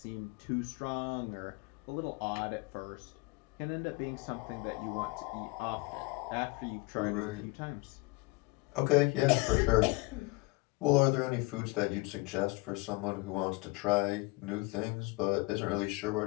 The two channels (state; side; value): quieter; right; 24.4 dB